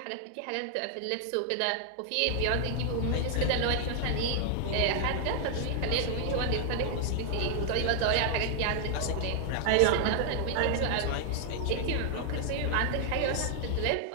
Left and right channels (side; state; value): both; different; correlation 0.00